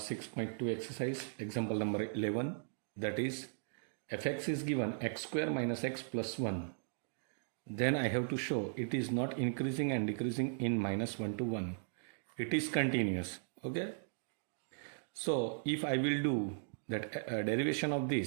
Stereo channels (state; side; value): silent; left; digital silence